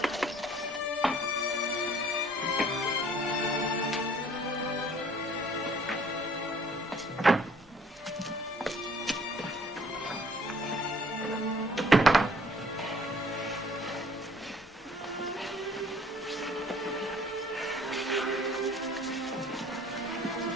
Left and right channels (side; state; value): both; normal; correlation 0.57